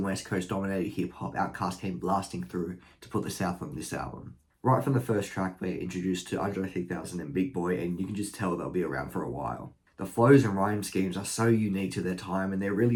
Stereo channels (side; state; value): both; identical; correlation 1.00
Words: West Coast dominated hip-hop, Outkast came blasting through to put the South on this album. Right from the first track, we're introduced to Andre 3000 and Big Boy, and you can just tell they'll be around for a while. The flows and rhyme schemes are so unique to their time, and there